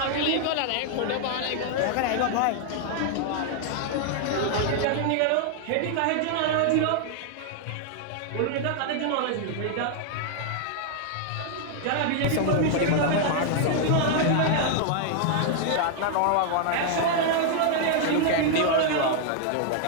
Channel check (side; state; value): both; different; correlation 0.00